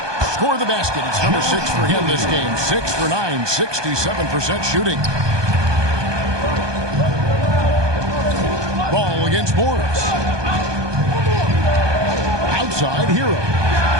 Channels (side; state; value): left; late; 1.2 ms